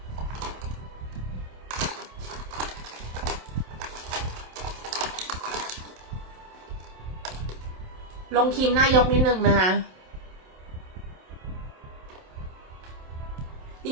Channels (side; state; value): left; late; 27 ms